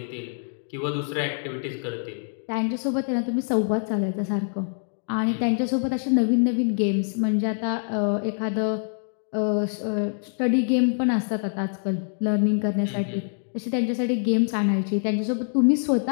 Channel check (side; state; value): right; silent; digital silence